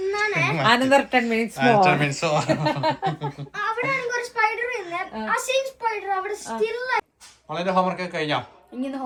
അനന്തർ 10 മിനിറ്റ്സ് ഹോംവർക്ക് കഴിഞ്ഞോ? ഇങ്ങനെ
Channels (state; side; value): identical; both; correlation 1.00